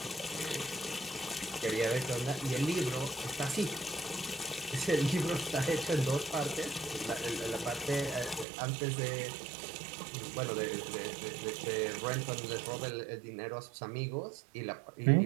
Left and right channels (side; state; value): left; drops out; at 8.5 s